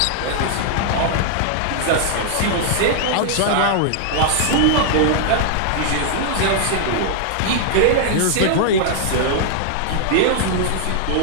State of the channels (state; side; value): different; both; correlation 0.00